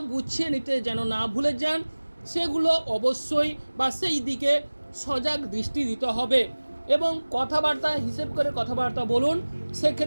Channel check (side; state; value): both; inverted; correlation -1.00